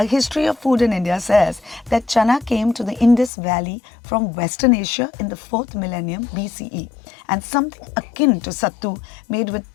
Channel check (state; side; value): drops out; right; at 3.3 s